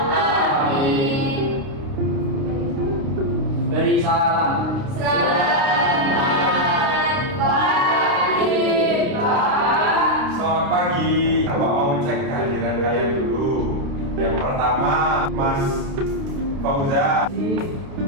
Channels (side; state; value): left; late; 29 ms